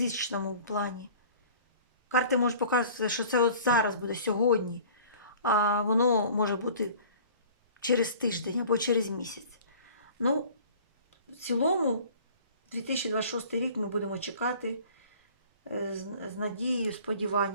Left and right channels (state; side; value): inverted; both; correlation -0.46